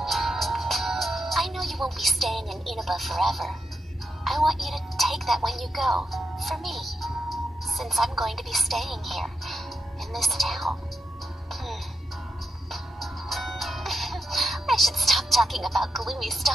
staying in Inaba forever. I want you to take that when you go, for me, since I'm going to be staying here, in this town. I should stop talking about gloomy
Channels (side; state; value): both; normal; correlation 0.84